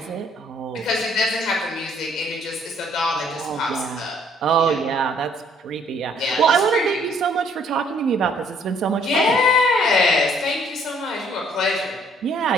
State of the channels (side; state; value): both; normal; correlation 0.63